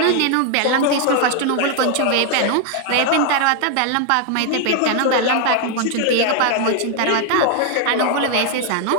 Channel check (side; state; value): both; different; correlation 0.00